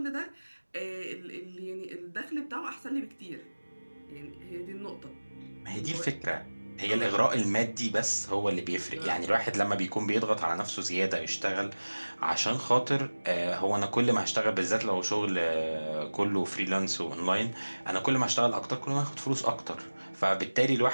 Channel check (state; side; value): inverted; both; correlation -1.00